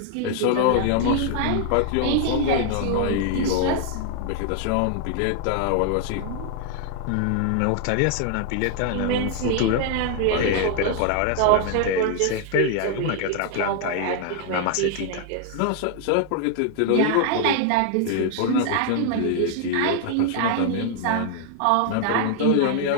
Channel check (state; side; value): different; both; correlation 0.00